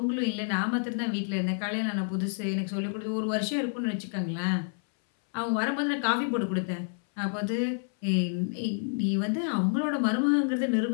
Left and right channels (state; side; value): silent; right; 59 dB below the other